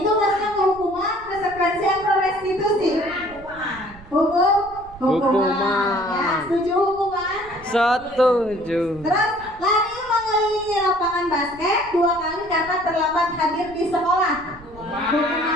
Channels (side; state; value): right; noise; rumble, 20 dB below the sound